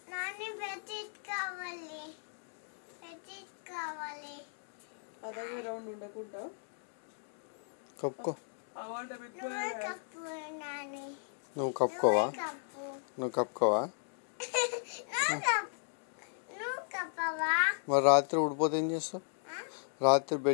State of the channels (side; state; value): right; silent; digital silence